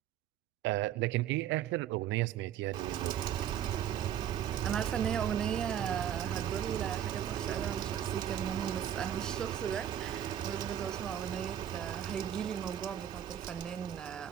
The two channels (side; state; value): left; quieter; 10.4 dB